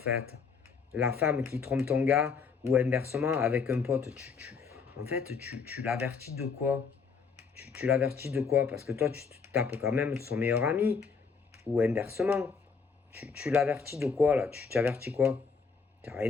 La femme qui trompe ton gars ou inversement avec un pote, en fait, tu l'avertis de quoi? Tu l'avertis de quoi? Parce que toi, tu te tapes quand même de son meilleur ami ou inversement. Tu l'avertis de quoi là? Tu avertis quoi? T'as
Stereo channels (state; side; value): quieter; right; 5.4 dB